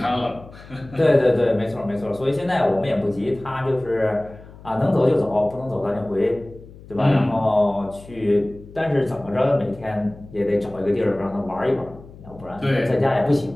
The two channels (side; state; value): left; noise; hum, 19 dB below the sound